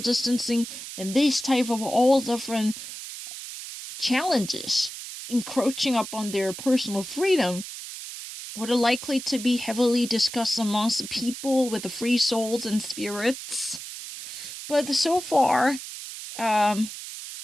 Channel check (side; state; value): right; noise; hiss, 10 dB below the sound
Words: distancing, and this type of all different challenges encroaching upon their personal freedom would are likely to be heavily discussed amongst the people with the free souls and spirits. But so far,